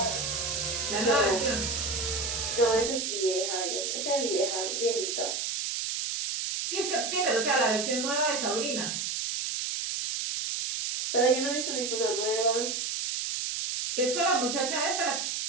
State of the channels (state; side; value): noise; right; hiss, 2 dB below the sound